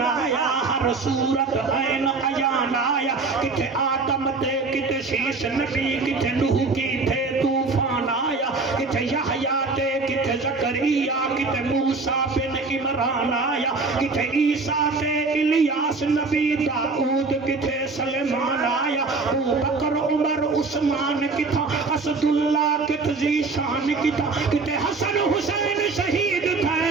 آیا ہر صورت عین عیان آیا کتے آدم تے کتے شیش نبی کتے نوح کی تھے طوفان آیا کتے یحییٰ تے کتے زکریا کتے موسیٰ بن عمران آیا کتے عیسیٰ تے الیاس نبی داؤد کتے سلیمان آیا ابو بکر عمر عثمان کتا اسد اللہ کت ذیشان کتا کتے حسن حسین شہید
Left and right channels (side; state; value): left; quieter; 4.0 dB